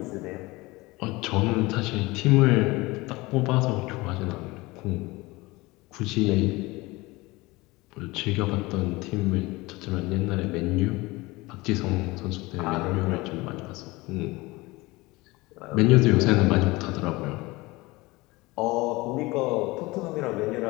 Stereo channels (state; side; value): quieter; right; 22.0 dB